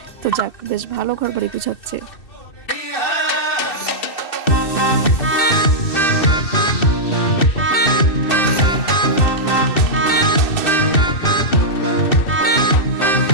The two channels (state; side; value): late; right; 2.6 ms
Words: তো যাক, বেশ ভালো ঘরবাড়ি গুছাচ্ছে।